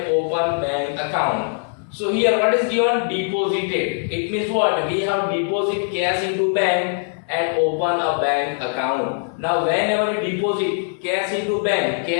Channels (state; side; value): silent; right; digital silence